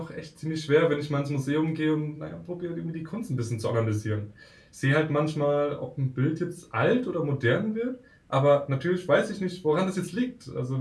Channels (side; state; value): both; identical; correlation 1.00